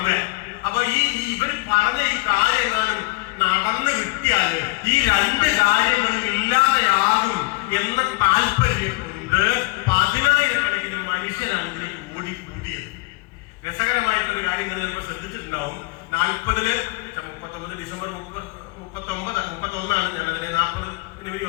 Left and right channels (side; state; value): right; quieter; 23.9 dB